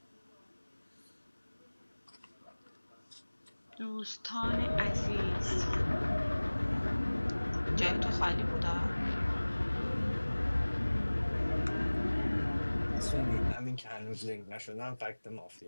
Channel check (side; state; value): both; inverted; correlation -1.00